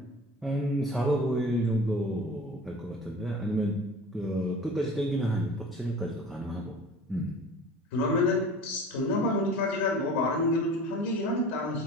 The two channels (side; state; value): both; normal; correlation 0.40